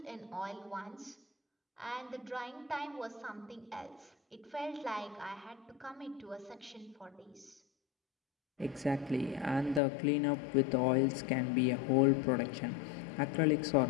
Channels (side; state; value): right; drops out; at 9.8 s